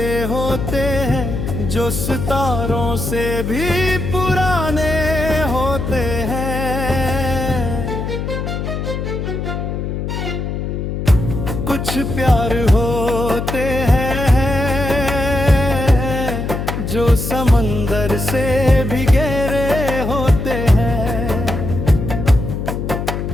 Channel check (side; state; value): left; noise; hum, 3 dB below the sound